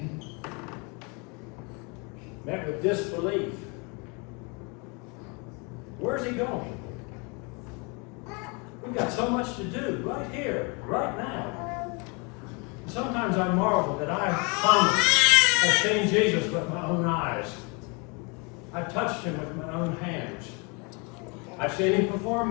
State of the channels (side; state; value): right; quieter; 31.6 dB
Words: met with disbelief. Where's he going? We've got so much to do right here, right now. Sometimes I marvel that I, Thomas, have seen Jesus with my own eyes. I've touched him with my own hands. I've seen him